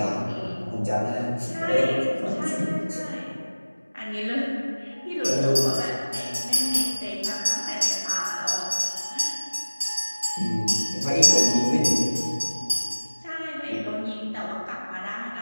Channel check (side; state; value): both; inverted; correlation -1.00